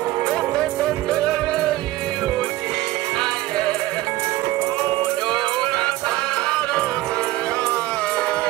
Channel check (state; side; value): quieter; left; 17.1 dB